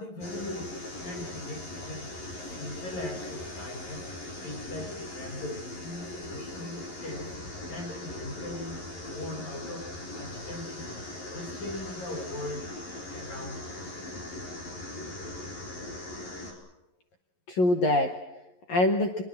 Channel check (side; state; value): right; late; 11 ms